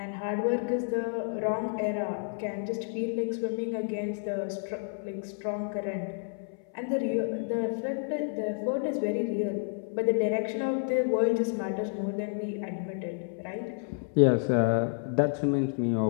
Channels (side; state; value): right; silent; 58 dB below the other